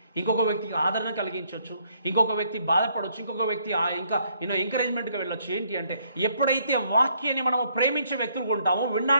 ఇంకొక వ్యక్తికి ఆదరణ కలిగించవచ్చు, ఇంకొక వ్యక్తి బాధపడవచ్చు, ఇంకొక వ్యక్తి ఇంకా ఎంకరేజ్మెంట్గా వెళ్ళొచ్చు. ఏంటి అంటే ఎప్పుడైతే వాక్యాన్ని మనము ప్రేమించే వ్యక్తులు ఉంటామో,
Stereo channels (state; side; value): inverted; both; correlation -0.69